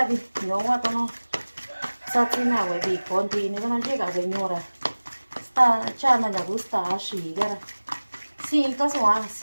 vi no wa no sa ti na we vi conti ne no llega señora sta cha na ya gusta shi gara sin to so a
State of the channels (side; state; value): both; inverted; correlation -1.00